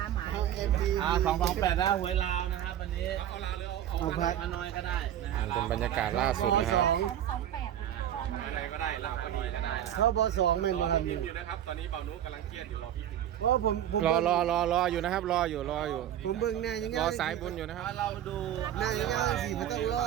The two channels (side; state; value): left; quieter; 11.0 dB